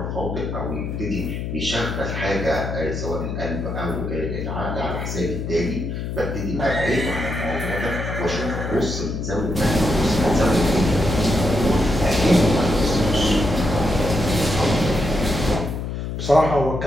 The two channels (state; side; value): noise; left; hum, 4 dB below the sound